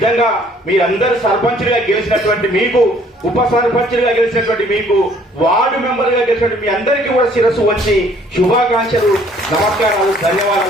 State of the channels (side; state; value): both; normal; correlation 0.59